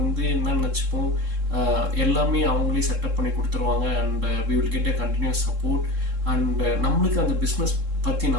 என்ன நினச்சிப்போம், எல்லாமே அவங்களே செட்டப் பண்ணி கொடுத்துருவாங்க and we will get a continuous support. And நம்மளுக்கு அந்த பிஸ்னஸ் பற்றி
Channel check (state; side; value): late; left; 3.7 ms